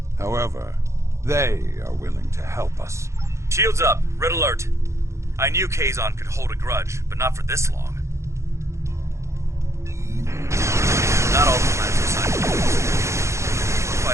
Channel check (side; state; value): left; late; 0.14 ms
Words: However, they are willing to help us. Shields up. Red alert. I knew Kazon could hold a grudge, but not for this long. Not all the plans are signed. We're